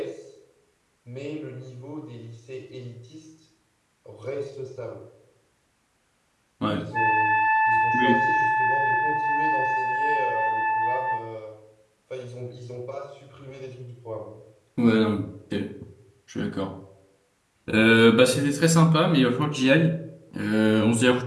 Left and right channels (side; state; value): both; identical; correlation 1.00